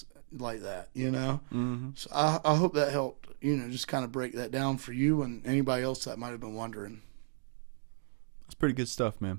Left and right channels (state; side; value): silent; left; digital silence